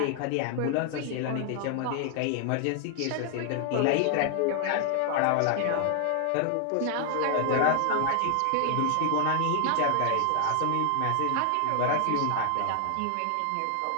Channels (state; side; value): different; both; correlation 0.00